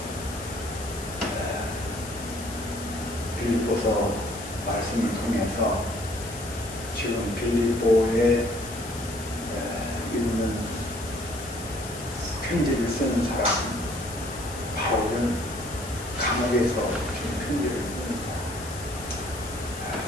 빌립보서 말씀을 통해서 지금 빌립보에 있는 편지를 쓰는 사람, 바울은 감옥에서 지금 편지를 쓰는 사람.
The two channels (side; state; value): left; noise; hiss, 13 dB below the sound